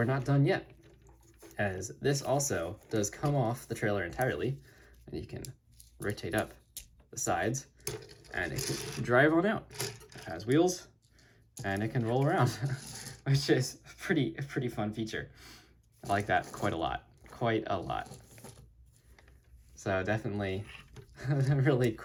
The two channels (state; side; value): identical; both; correlation 1.00